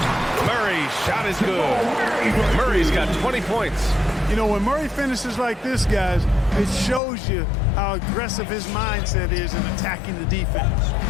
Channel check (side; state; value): right; drops out; at 7.0 s